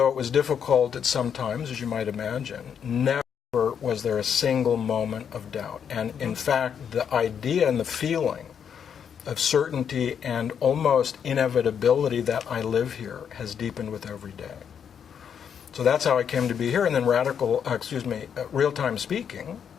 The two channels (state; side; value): quieter; right; 7.8 dB